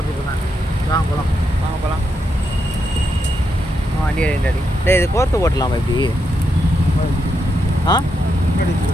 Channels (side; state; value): both; normal; correlation 0.82